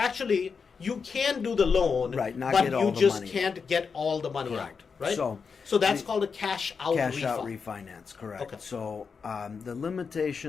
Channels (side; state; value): right; quieter; 5.6 dB